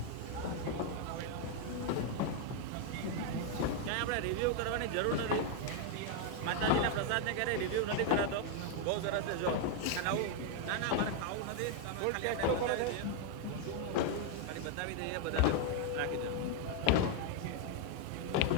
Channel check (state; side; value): different; both; correlation 0.00